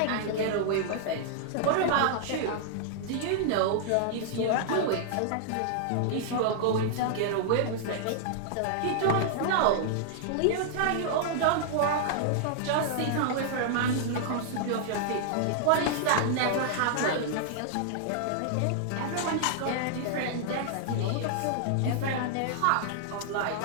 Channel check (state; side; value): different; both; correlation -0.01